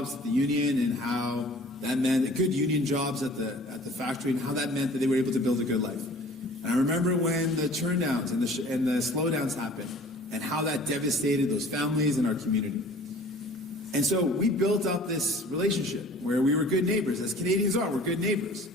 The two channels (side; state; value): both; normal; correlation 0.48